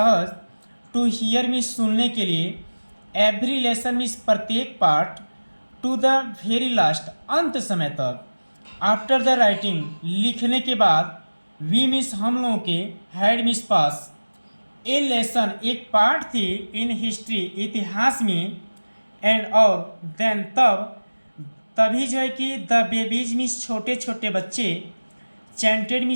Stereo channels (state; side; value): inverted; both; correlation -1.00